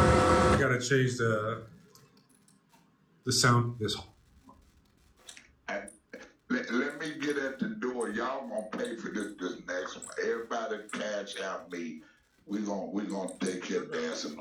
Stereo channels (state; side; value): identical; both; correlation 1.00